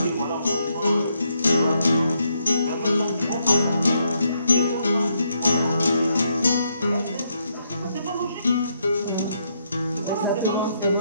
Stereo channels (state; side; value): inverted; both; correlation -0.77